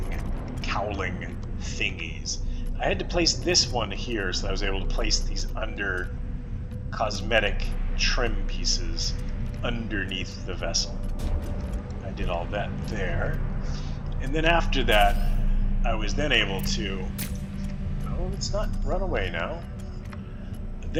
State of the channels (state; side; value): identical; both; correlation 1.00